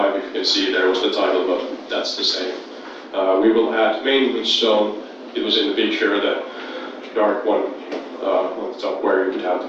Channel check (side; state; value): both; identical; correlation 1.00